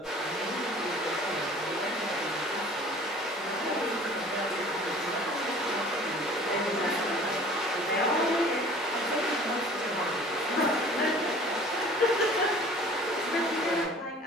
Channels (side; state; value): both; normal; correlation 0.48